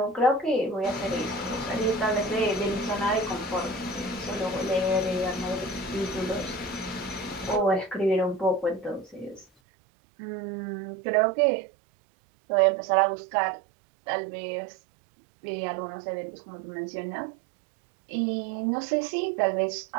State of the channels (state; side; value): drops out; left; at 9.5 s